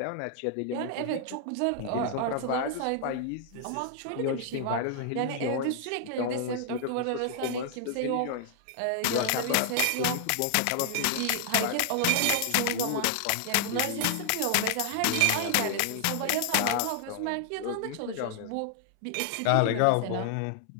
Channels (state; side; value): different; both; correlation 0.00